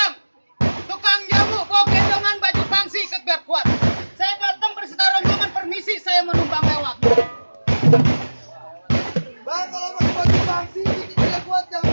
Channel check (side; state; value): both; inverted; correlation -1.00